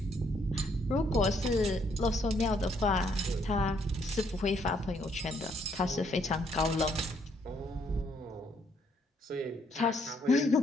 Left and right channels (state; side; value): normal; both; correlation 0.70